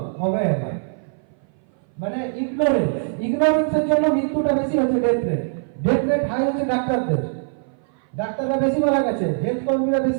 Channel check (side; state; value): left; silent; 58 dB below the other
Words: অবহেলা, মানে ইগনোরেন্সের জন্য মৃত্যুটা বেশি হচ্ছে, ডেথ রেট হাই হচ্ছে ডাক্তারদের। ডাক্তাররা বেশি মারা গেছে, হেলথ কর্মীরা